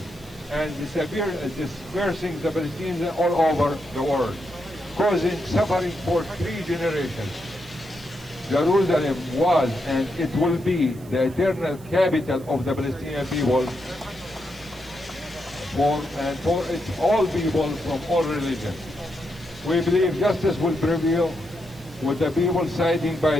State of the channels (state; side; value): noise; right; hiss, 25 dB below the sound